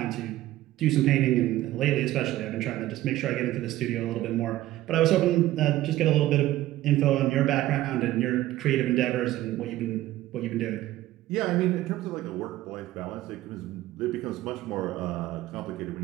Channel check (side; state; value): left; quieter; 15.3 dB